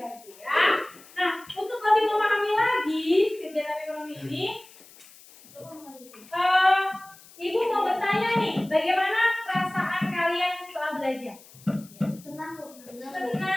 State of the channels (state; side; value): noise; left; hiss, 23 dB below the sound